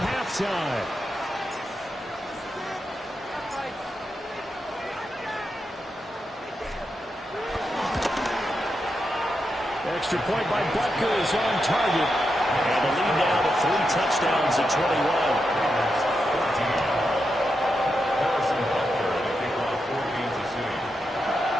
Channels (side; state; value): both; normal; correlation 0.86